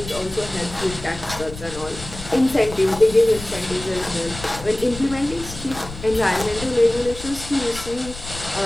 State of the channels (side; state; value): left; noise; rumble, 13 dB below the sound